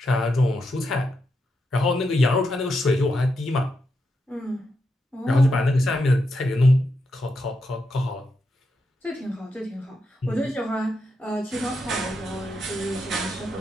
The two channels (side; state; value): both; normal; correlation 0.84